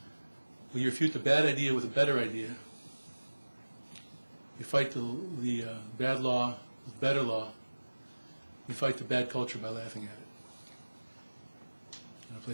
Well, you refute the bad idea with a better idea. You fight the bad law with better law. You fight the bad culture by laughing at it and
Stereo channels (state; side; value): inverted; both; correlation -1.00